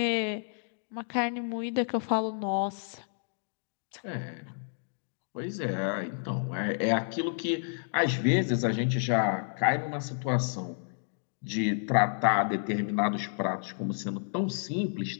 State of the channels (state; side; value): silent; right; digital silence